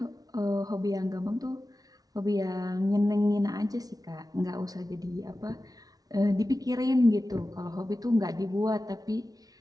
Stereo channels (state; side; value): late; left; 0.18 ms